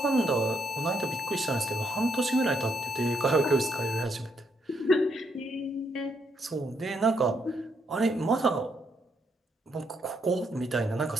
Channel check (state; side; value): normal; both; correlation 0.75